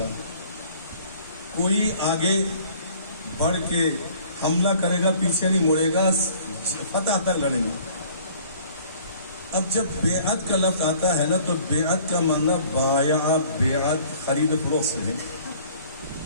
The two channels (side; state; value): both; inverted; correlation -0.54